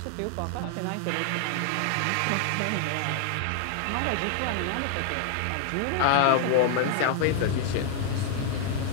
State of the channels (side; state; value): both; different; correlation 0.00